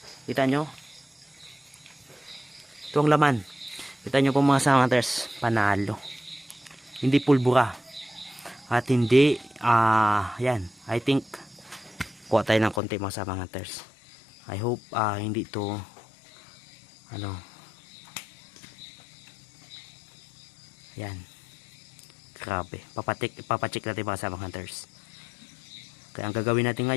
Kita nyo? Ito ang laman. Kita nyo po mga kasamang hunters. Panalo. Hindi pulbura. At hindi, yan. I think, kuha tayo ng konti mga kasamang hunters. I hope, hindi ito, yan. Grabe. Papacheck natin mga kasamang hunters. Kaya ang gagawin natin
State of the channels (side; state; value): right; drops out; at 12.8 s